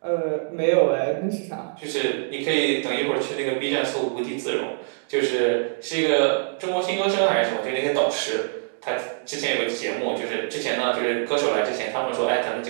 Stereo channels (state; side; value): silent; left; digital silence